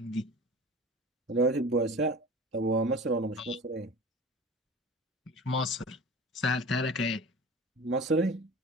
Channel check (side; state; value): both; normal; correlation 0.38